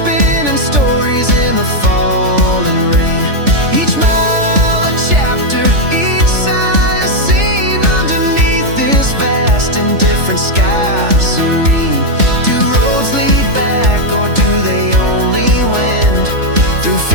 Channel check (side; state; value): left; late; 3.4 ms